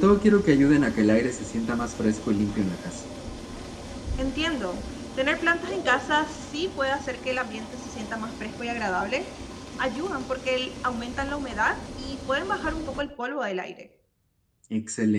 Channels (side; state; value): both; identical; correlation 1.00